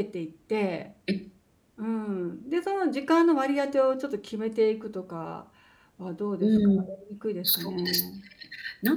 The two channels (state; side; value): identical; both; correlation 1.00